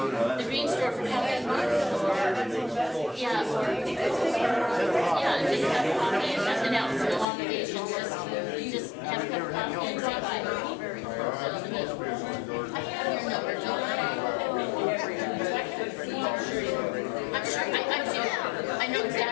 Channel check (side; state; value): right; drops out; at 7.2 s